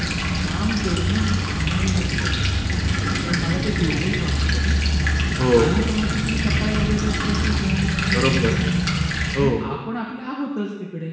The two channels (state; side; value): identical; both; correlation 1.00